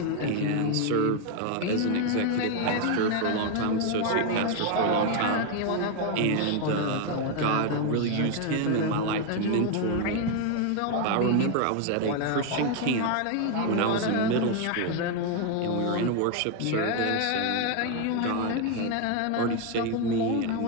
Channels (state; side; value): different; both; correlation 0.01